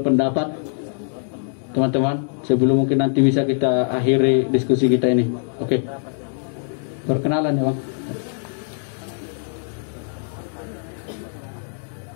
Teman-teman, sebelum mungkin nanti bisa kita akhiri diskusi kita ini. Oke. Perkenalan ya, Bang.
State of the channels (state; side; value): silent; right; 64 dB below the other